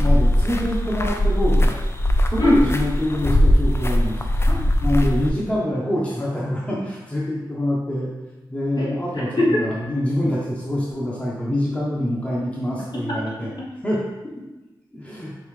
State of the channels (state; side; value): normal; both; correlation 0.93